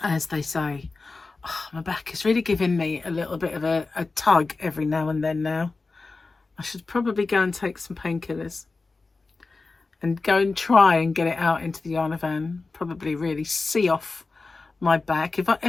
as they say. Oh, my back is really giving me a little bit of a tug every now and then now. I should probably go and take some painkillers and go and try and get it out into the yarn van. Probably really see off my back. If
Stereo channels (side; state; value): right; quieter; 3.8 dB